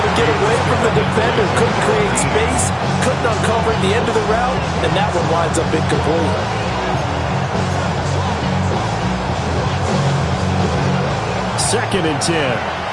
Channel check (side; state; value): both; identical; correlation 1.00